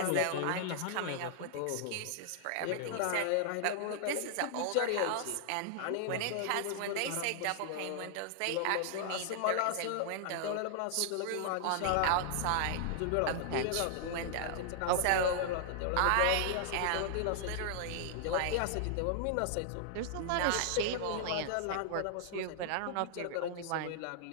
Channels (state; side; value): different; both; correlation -0.01